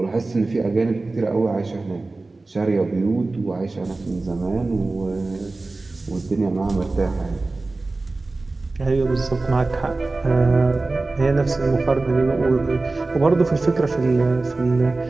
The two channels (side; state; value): left; quieter; 3.3 dB